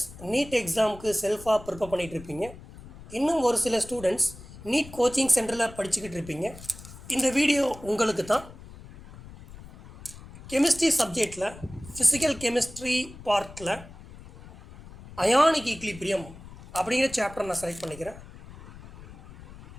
நீட் எக்ஸாமுக்கு செல்ஃபாக ப்ரிப்பேர் பண்ணிகிட்டு இருப்பீங்க. இன்னும் ஒரு சில ஸ்டூடெண்ட்ஸ் நீட் கோச்சிங் சென்டரில் படிச்சுக்கிட்டு இருப்பீங்க. இந்த வீடியோ உங்களுக்கு தான். கெமிஸ்ட்ரி சப்ஜெக்டில் ஃபிசிக்கல் கெமிஸ்ட்ரி பார்ட்டில் அயானிக் ஈக்லிபிரியம் அப்படிங்கிற சாப்டர் நான் செலக்ட் பண்ணிக்கிறேன்.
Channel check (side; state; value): left; noise; rumble, 17 dB below the sound